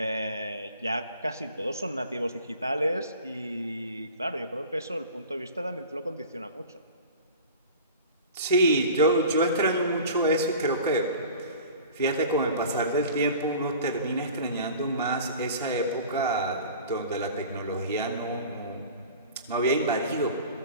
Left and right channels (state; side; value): inverted; both; correlation -0.40